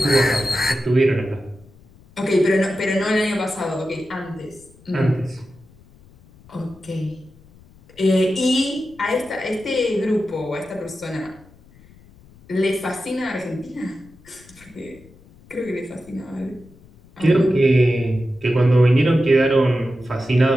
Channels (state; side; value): noise; left; rumble, 26 dB below the sound